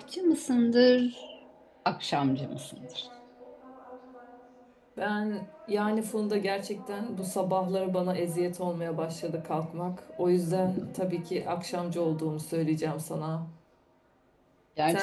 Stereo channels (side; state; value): both; identical; correlation 1.00